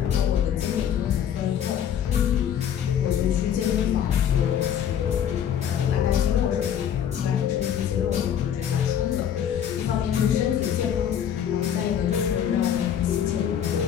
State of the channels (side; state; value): right; quieter; 9.3 dB